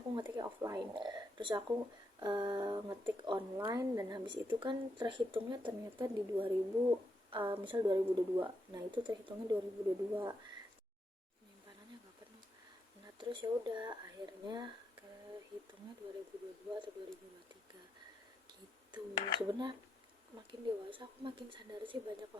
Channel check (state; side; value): normal; both; correlation 0.81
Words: ngetiknya offline, terus aku ngetik online, dan habis itu kan terhitungnya ternyata di 2000, misal 2022, nah itu terhitungnya 2022, penyimpanannya gak penuh. Nah terus ya udah akhirnya kehitungnya 2022 atau 2023 gitu. Sebenarnya makin dewasa aku makin sadar sih banyak